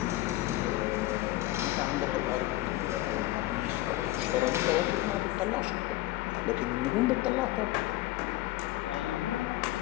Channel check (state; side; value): quieter; right; 17.4 dB